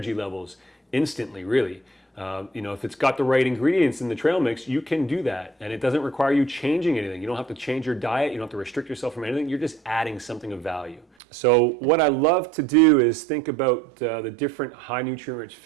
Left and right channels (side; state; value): left; drops out; at 11.1 s